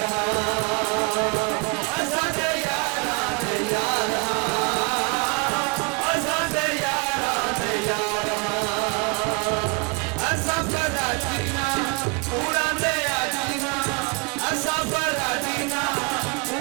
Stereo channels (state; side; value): quieter; left; 32.8 dB